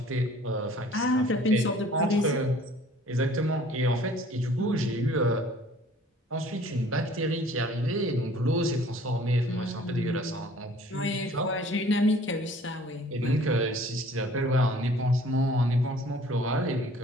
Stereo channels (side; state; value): both; normal; correlation 0.52